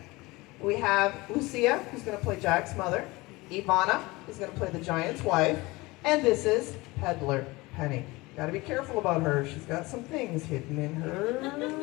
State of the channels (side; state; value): right; quieter; 22.2 dB